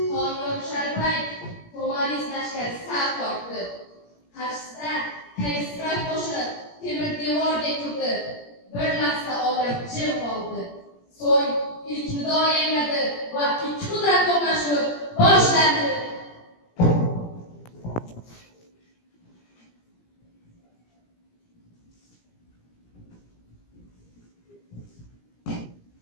Konyor Sharpay Tomaris lashkari saf tortdi. Qarshisida Kayisrat qo'shinib temir devordek turdi. Bir lahza olam jim qoldi. So'ng ilk nido yangradi va ikki qudrat to'qnashuvi boshlandi.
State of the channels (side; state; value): right; late; 17 ms